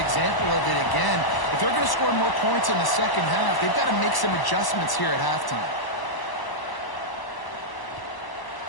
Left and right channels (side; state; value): right; late; 1.0 ms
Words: of it again. If they're going to score more points in the second half, they've got to make some adjustments here at halftime.